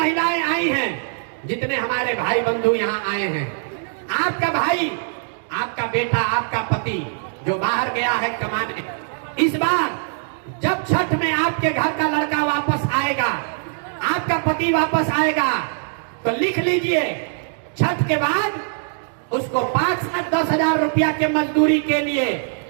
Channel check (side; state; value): left; silent; digital silence